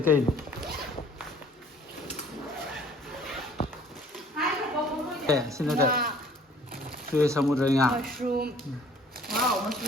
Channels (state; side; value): normal; both; correlation 0.54